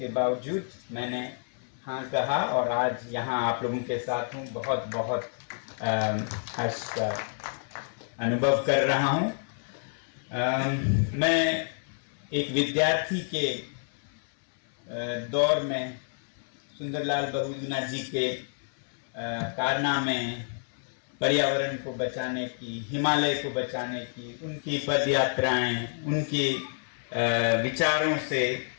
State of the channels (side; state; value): right; silent; 59 dB below the other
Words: बावजूद मैंने हाँ कहा और आज यहाँ आप लोगों के साथ हूँ। बहुत बहुत हर्ष का अनुभव कर रहा हूँ। मैं एक विद्यार्थी के दौर में सुंदरलाल बहुगुणा जी के कारनामे, पर्यावरण को बचाने की, हिमालय को बचाने की, उनकी पद यात्राएं, उनके विचारों से